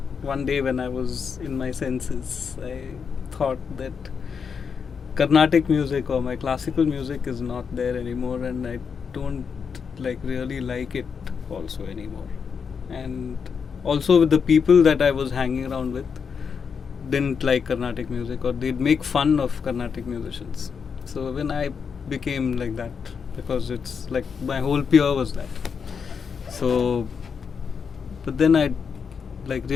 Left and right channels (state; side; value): quieter; right; 6.2 dB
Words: one day when I was in my senses, I thought that Carnatic music or my classical music is not there anymore, and I don't really like it also anymore. And also with the people that I was hanging around with didn't like Carnatic music, or they'd make fun of Carnatic musicians. So when I became like that, because it's like my whole peer was that. So, but then I